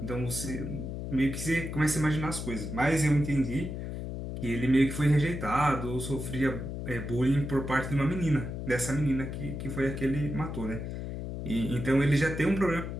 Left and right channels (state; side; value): noise; left; hum, 6 dB below the sound